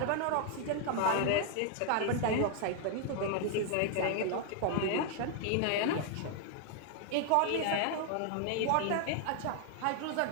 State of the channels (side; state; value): both; different; correlation 0.00